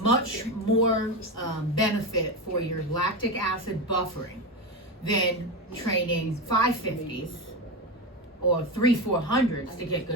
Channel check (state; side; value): normal; both; correlation 0.17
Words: more benefit for your lactic acid buffering than training 550s or 3 400s to get